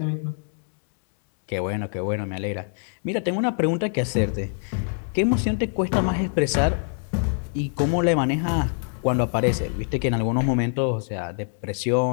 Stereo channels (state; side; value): silent; right; 62 dB below the other